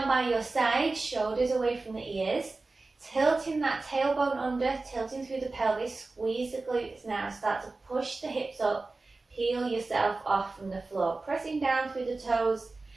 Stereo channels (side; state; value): left; quieter; 3.5 dB